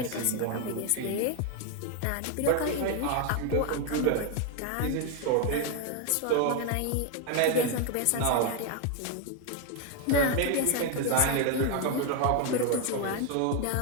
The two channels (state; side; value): different; both; correlation 0.01